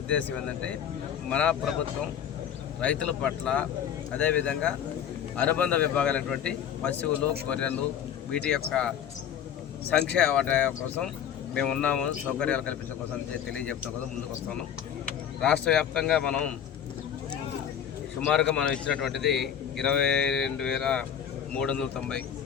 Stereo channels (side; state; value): right; quieter; 9.0 dB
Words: ఏంటంటే మన ప్రభుత్వం రైతుల పట్ల, అదేవిధంగా అనుబంధ విభాగాలైనటువంటి పశువులు, గొర్రెలు, వీటి యొక్క సంక్షేమ వాటి కోసం మేము ఉన్నాము, సౌకర్యాలు కల్పించడం కోసం తెలియజెప్పడం కోసం ముందుకు వస్తున్నాం. రాష్ట్ర వ్యాప్తంగా మనం సుమారుగా మనం ఇచ్చినటువంటిది 22,390